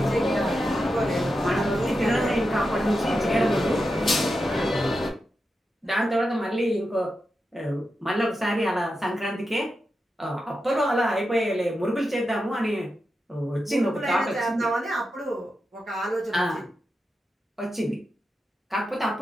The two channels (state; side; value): normal; both; correlation 0.89